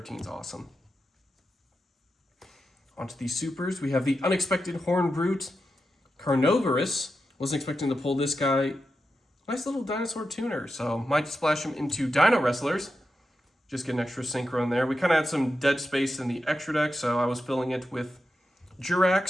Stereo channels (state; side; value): normal; both; correlation 0.89